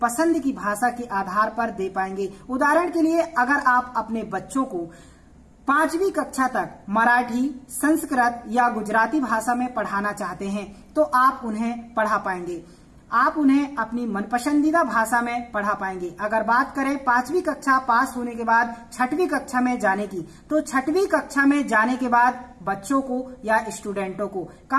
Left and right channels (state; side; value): identical; both; correlation 1.00